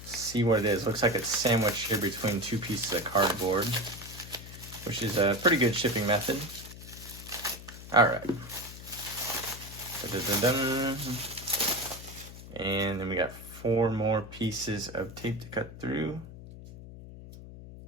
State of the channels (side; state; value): left; noise; hum, 14 dB below the sound